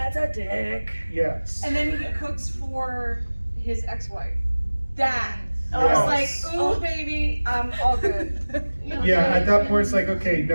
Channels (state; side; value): inverted; both; correlation -1.00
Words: a dick. Yes. And then he cooks for his ex-wife. That. I Yes. was like, ooh, baby, I'm all good. Yeah, at that point it's like, okay,